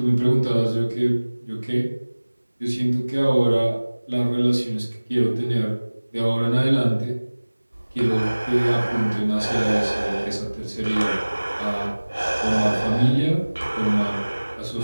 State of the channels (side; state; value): both; inverted; correlation -1.00